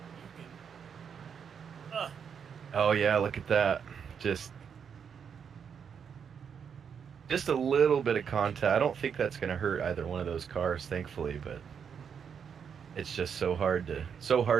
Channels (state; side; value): quieter; left; 7.1 dB